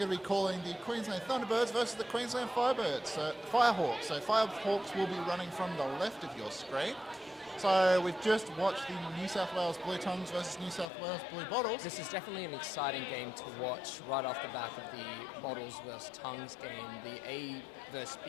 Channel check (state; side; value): drops out; right; at 10.9 s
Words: to be calling the Queensland Thunderbirds versus the Queensland Firehawks. So Firehawks will be running from the left of your screen. So we've just watched the New South Wales Blue Tongues versus New South Wales Blue Bottles. This is definitely an exciting game to watch right off the back of the Bottles versus Tongues game. The A versus